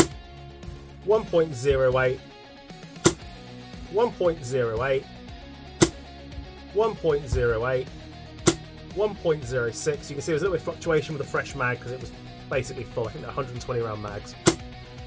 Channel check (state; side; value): identical; both; correlation 1.00